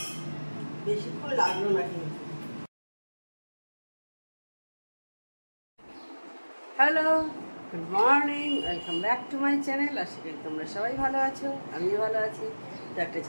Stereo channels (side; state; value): both; inverted; correlation -1.00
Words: বেশিক্ষণ লাগলো না কিন্তু। Hello, good morning, welcome back to my channel. আশা করি তোমরা সবাই ভালো আছো, আমিও ভালো আছি। তো একটা